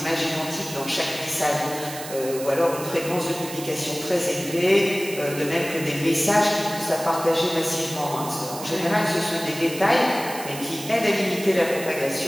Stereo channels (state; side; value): noise; right; hiss, 11 dB below the sound